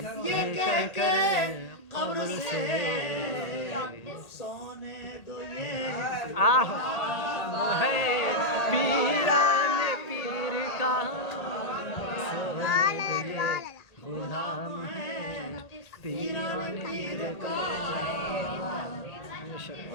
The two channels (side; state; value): right; late; 1.8 ms